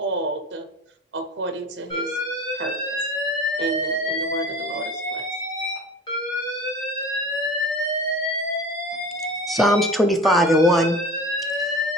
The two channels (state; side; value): normal; both; correlation 0.37